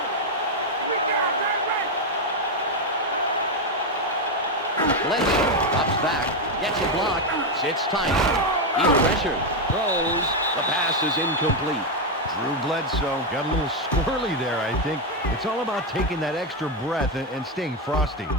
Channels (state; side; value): normal; both; correlation 0.06